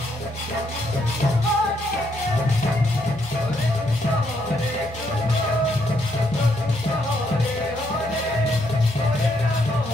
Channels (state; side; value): normal; both; correlation 0.74